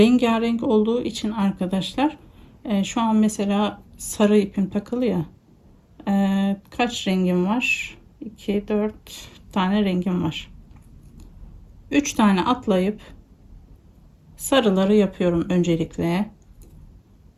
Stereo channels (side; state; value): both; identical; correlation 1.00